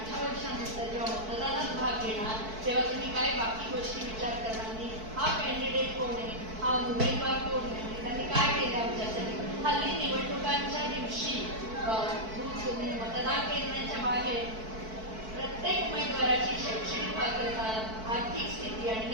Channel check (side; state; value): left; late; 4.6 ms